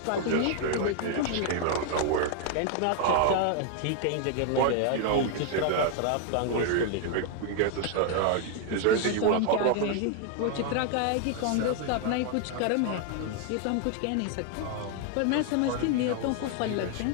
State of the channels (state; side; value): different; both; correlation 0.00